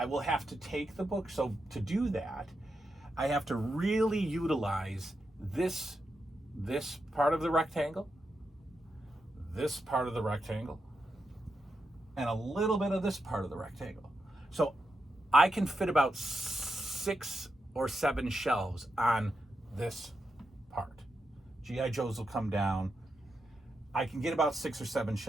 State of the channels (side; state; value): both; normal; correlation 0.86